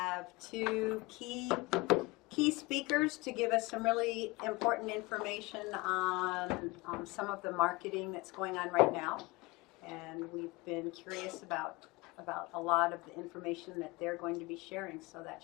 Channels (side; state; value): right; quieter; 23.4 dB